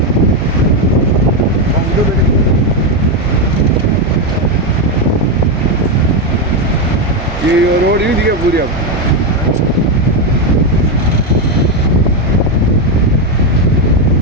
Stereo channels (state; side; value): normal; both; correlation 0.07